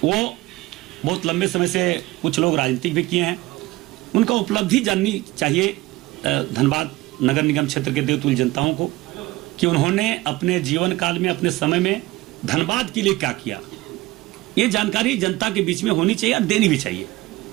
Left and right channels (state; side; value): quieter; left; 19.2 dB